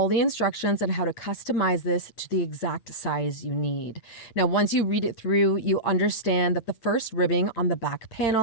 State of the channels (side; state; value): right; late; 8.8 ms